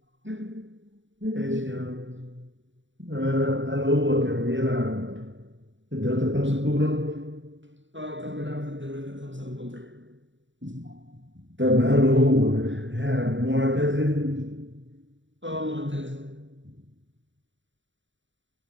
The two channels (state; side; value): late; left; 0.55 ms